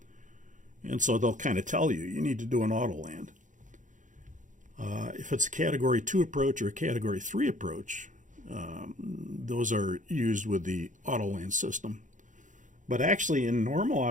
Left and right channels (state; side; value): late; left; 0.37 ms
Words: And so they'll kind of tell you need to do an autoland. If it's a Category 2 approach or a Category 3 approach, those are used with the autoland system. But actually, in normal